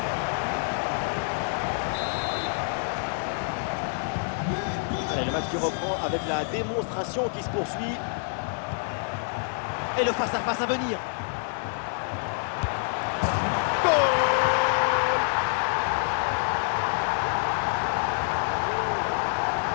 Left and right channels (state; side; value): silent; right; digital silence